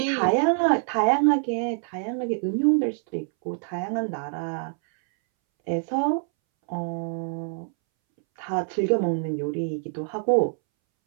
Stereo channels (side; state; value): left; silent; 61 dB below the other